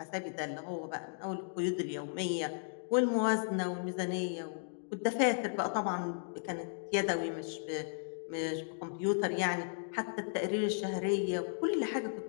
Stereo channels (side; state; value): right; silent; digital silence